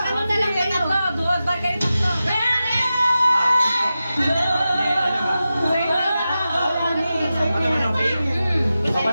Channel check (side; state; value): both; inverted; correlation -0.93